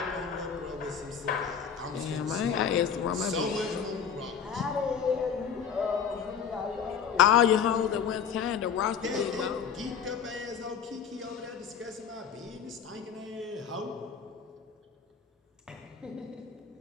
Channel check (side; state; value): right; quieter; 7.3 dB